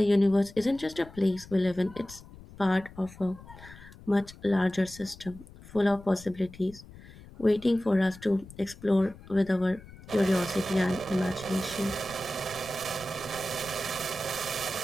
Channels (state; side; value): noise; left; rumble, 19 dB below the sound